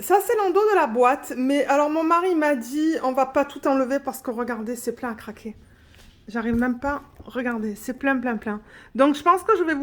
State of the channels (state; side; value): identical; both; correlation 1.00